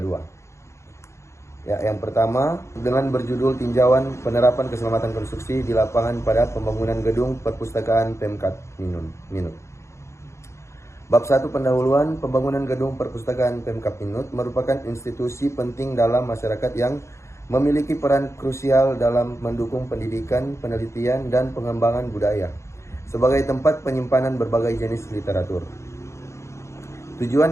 Yang pertama, dengan berjudul Tinjauan Penerapan Keselamatan Konstruksi di Lapangan pada Pembangunan Gedung Perpustakaan Pemkab Minut. Bab 1 pendahuluan pembangunan gedung perpustakaan Pemkab Minut merupakan institusi penting dalam masyarakat yang memiliki peran krusial dalam mendukung pendidikan, penelitian, dan pengembangan budaya sebagai tempat penyimpanan berbagai jenis literatur.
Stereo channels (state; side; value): late; right; 0.14 ms